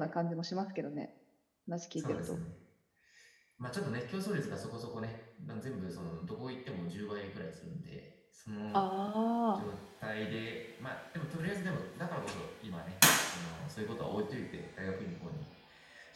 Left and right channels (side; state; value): both; identical; correlation 1.00